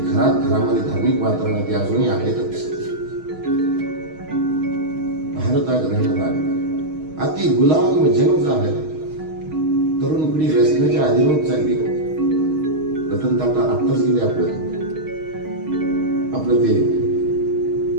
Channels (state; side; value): late; left; 6.3 ms